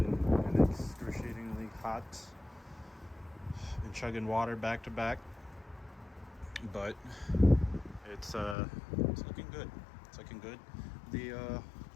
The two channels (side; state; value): right; drops out; at 8.6 s